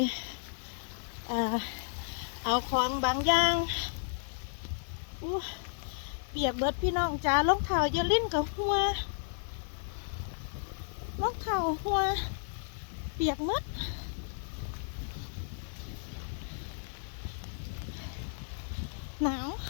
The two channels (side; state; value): right; silent; digital silence